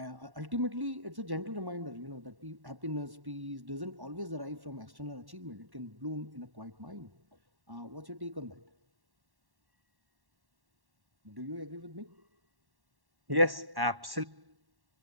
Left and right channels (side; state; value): left; late; 1.1 ms